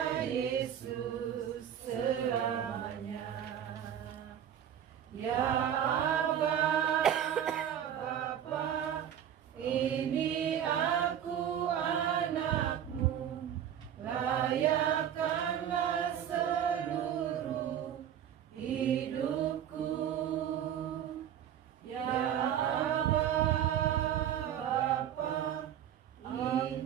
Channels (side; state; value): left; quieter; 9.8 dB